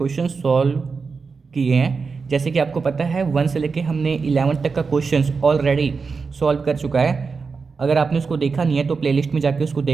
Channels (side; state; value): left; quieter; 4.9 dB